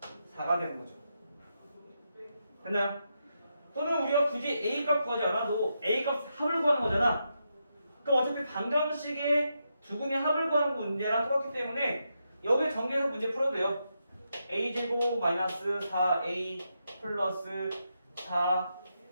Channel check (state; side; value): inverted; both; correlation -0.84